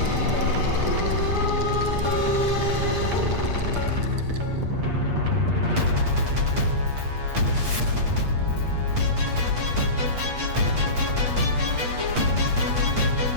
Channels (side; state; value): left; late; 8.4 ms